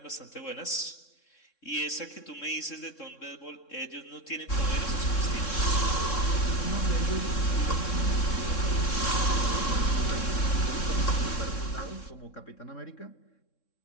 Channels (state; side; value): late; right; 3.6 ms